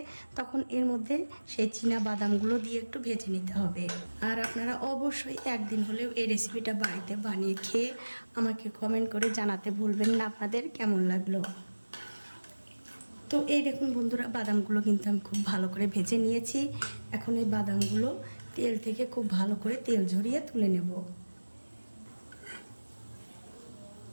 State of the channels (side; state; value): both; inverted; correlation -1.00